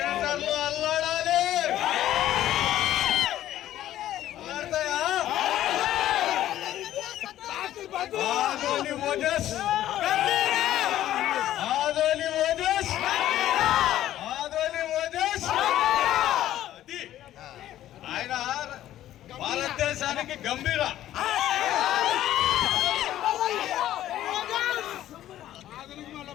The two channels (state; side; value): quieter; right; 12.9 dB